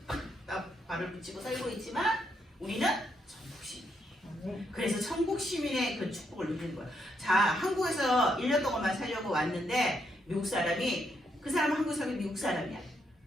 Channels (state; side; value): normal; both; correlation 0.77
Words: 발을 붙이고 살고 있지만 우리는 천국 시민이에요. 그래서 천국 시민의 그 축복을 누리는 거예요. 자, 한국에서 1년 동안만 살려고 왔는데 미국 사람이 그 사람은 한국 사람이 미국 사람이야.